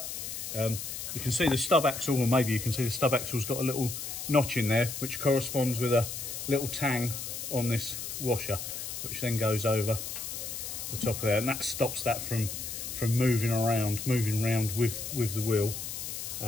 You can see the stub axle, or maybe you can see the stub axle's got a little notch in there, which corresponds with a little tang on this washer, which then goes over the top of there, and that stops that from moving around with the wheel.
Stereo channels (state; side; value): noise; left; hiss, 6 dB below the sound